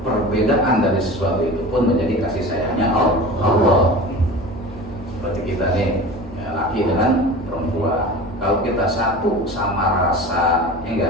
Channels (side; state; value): both; normal; correlation 0.35